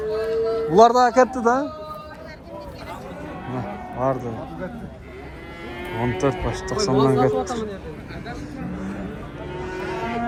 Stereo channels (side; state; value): both; identical; correlation 1.00